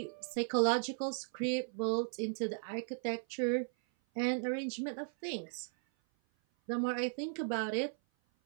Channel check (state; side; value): silent; left; 53 dB below the other